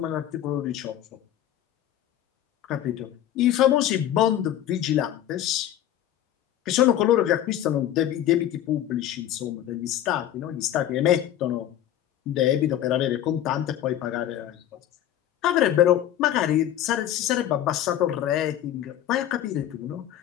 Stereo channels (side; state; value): right; quieter; 11.7 dB